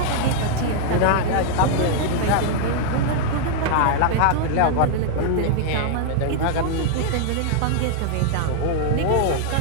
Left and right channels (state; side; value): different; both; correlation -0.01